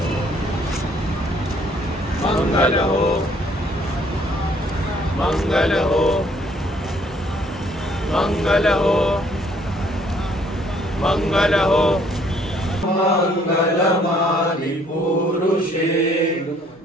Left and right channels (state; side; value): normal; both; correlation 0.63